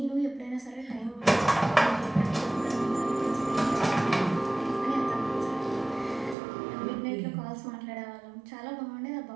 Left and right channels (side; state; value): left; drops out; at 6.4 s